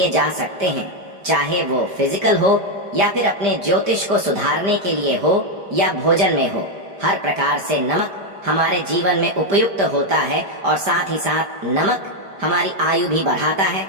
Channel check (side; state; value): left; late; 5.0 ms